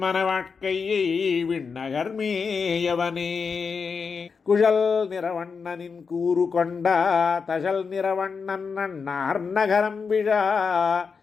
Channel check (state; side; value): quieter; right; 5.4 dB